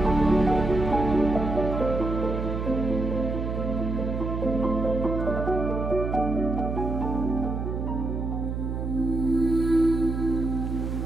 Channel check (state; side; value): noise; right; hum, 3 dB below the sound